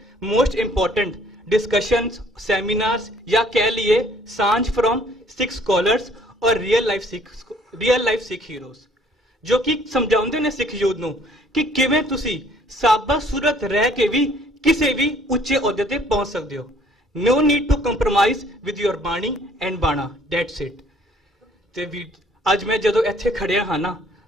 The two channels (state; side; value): normal; both; correlation 0.59